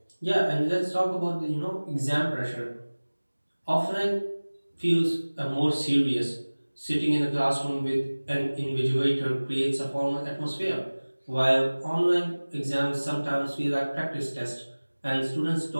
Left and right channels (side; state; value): both; inverted; correlation -1.00